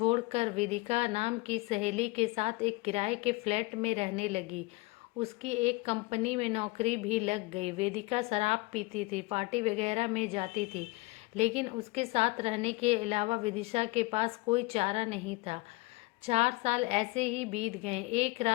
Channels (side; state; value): right; quieter; 23.4 dB